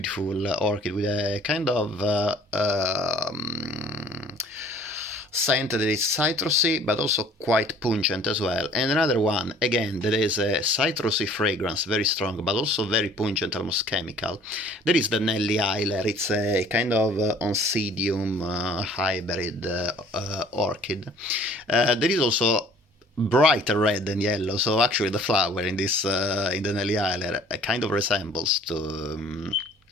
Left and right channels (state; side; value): normal; both; correlation 0.53